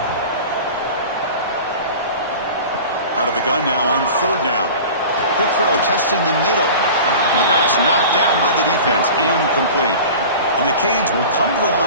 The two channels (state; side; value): inverted; both; correlation -0.37